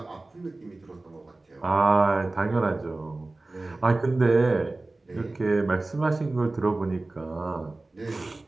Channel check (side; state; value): left; quieter; 3.0 dB